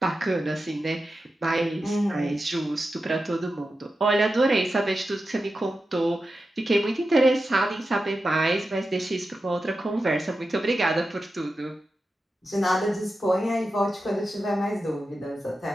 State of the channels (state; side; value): normal; both; correlation 0.91